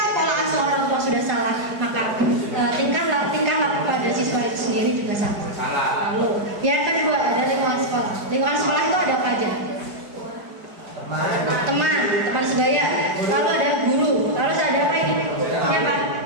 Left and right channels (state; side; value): late; left; 4.8 ms